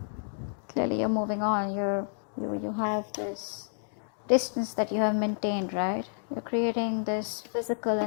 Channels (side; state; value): right; silent; digital silence